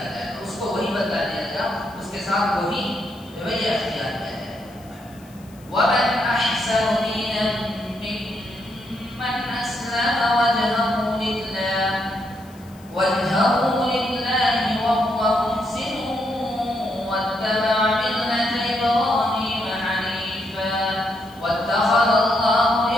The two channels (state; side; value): noise; left; hiss, 26 dB below the sound